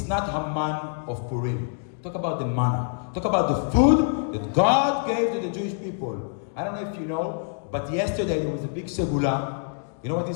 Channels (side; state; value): right; silent; digital silence